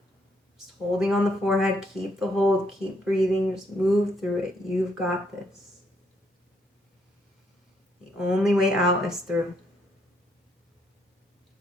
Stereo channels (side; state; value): both; normal; correlation 0.73